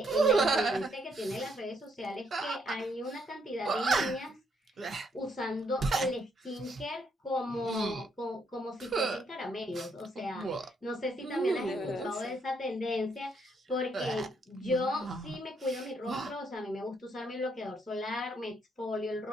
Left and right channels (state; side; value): normal; both; correlation 0.73